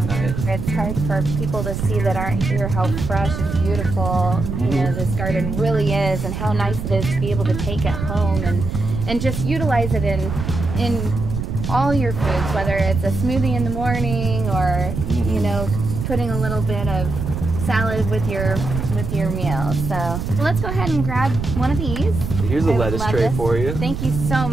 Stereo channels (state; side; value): noise; right; rumble, 4 dB below the sound